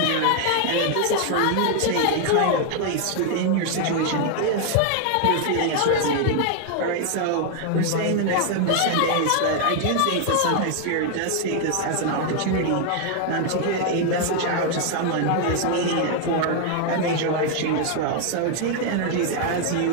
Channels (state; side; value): different; both; correlation 0.00